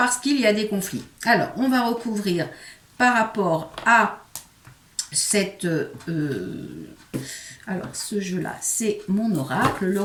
qu'il y a des conflits. Alors, on va recouvrir par rapport à cette... alors, ce jeu-là, c'est mon oracle,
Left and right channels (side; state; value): both; identical; correlation 1.00